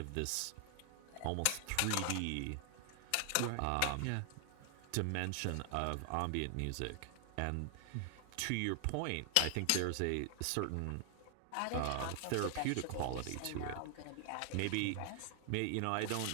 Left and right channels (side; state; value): both; different; correlation 0.00